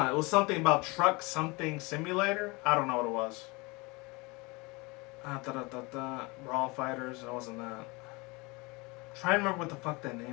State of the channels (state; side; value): quieter; right; 26.0 dB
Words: was something about Truck Something Simulator. I don't know what it was. Brawl Fighters. It wasn't that. Try and remember what the fuck that